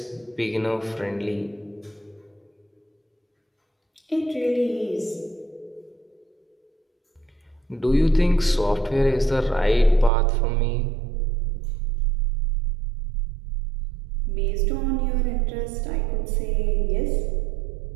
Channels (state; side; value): drops out; left; at 10.1 s